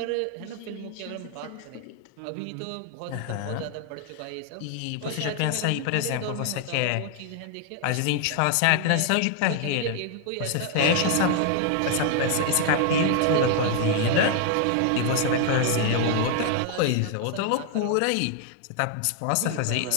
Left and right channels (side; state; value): both; different; correlation 0.00